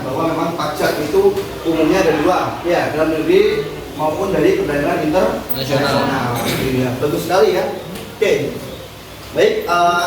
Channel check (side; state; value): both; identical; correlation 1.00